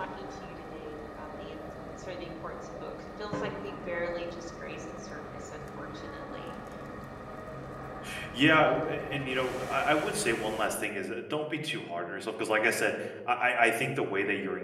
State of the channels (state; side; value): identical; both; correlation 1.00